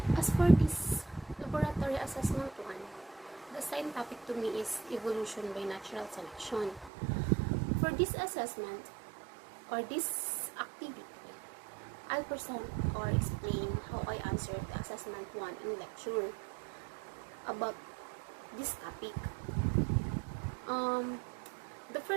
As for this laboratory assessment one, the assigned topic to me is evolution by natural selection. For this assessment or this activity, I'll present or explain how I answered the assessment one in lecture about this topic. The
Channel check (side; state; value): left; drops out; at 6.9 s